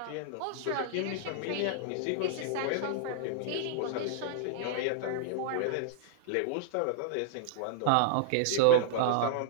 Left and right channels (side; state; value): both; different; correlation -0.01